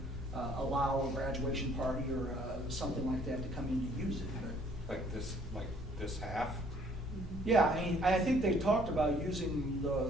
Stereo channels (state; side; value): normal; both; correlation 0.60